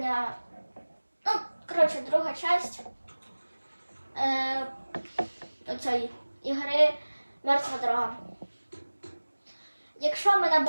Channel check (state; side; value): inverted; both; correlation -1.00